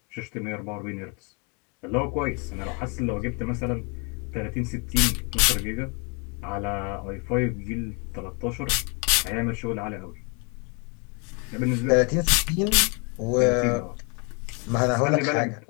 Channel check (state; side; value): quieter; right; 34.0 dB